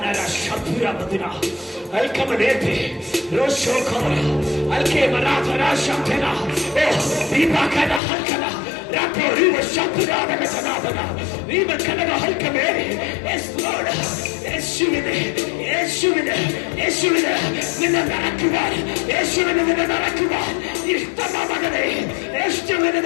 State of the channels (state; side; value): drops out; right; at 8.0 s